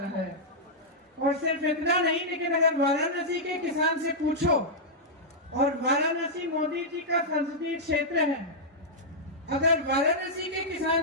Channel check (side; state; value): both; normal; correlation -0.09